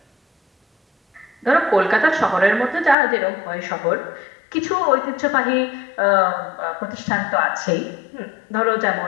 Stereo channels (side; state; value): right; drops out; at 3.0 s